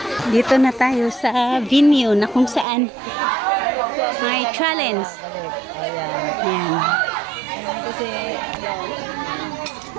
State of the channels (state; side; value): drops out; left; at 2.7 s